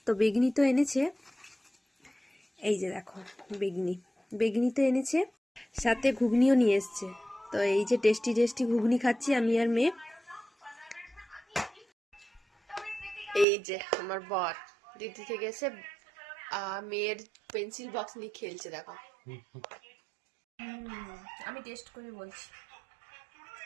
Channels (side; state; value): left; drops out; at 13.5 s